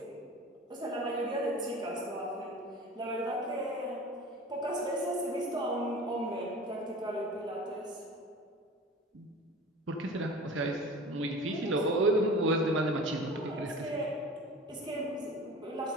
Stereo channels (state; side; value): normal; both; correlation 0.38